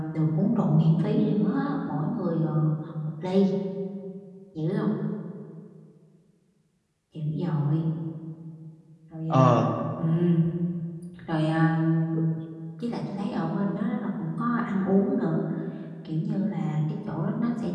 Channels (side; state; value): both; identical; correlation 1.00